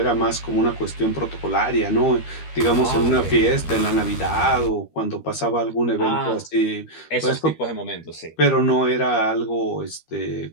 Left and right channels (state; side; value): late; right; 13 ms